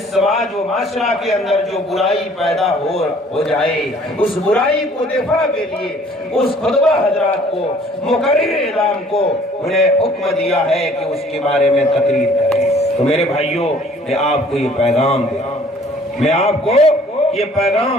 سماج و معاشرہ کے اندر جو برائی پیدا ہو جائے، اس برائی کو دفاع کے لیے اس خطبہ حضرات کو، مقرر اعلام کو انہیں حکم دیا ہے کہ اس کے بارے میں تقریر کریں۔ تو میرے بھائیوں، میں آپ کو یہ پیغام دے رہا ہوں، میں آپ کو یہ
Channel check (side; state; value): both; normal; correlation 0.56